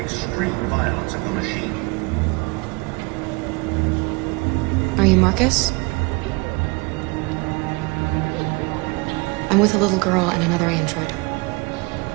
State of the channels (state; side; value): quieter; left; 27.1 dB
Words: violence of the machine. Are you Marcus? I'm with a little girl and another android.